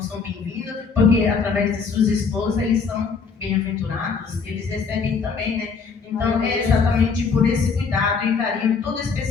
são bem-vindos, porque através de suas esposas eles são bem-aventurados, eles recebem também, né? Então é exatamente por esse cuidado e carinho todo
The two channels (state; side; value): quieter; right; 5.3 dB